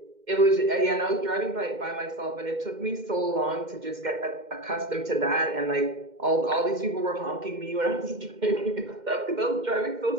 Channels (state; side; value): late; left; 2.1 ms